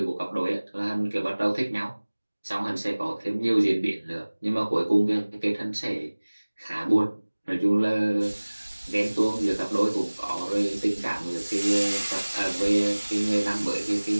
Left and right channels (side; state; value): both; inverted; correlation -1.00